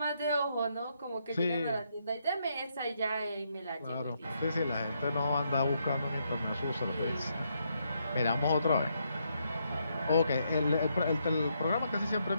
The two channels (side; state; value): both; inverted; correlation -0.77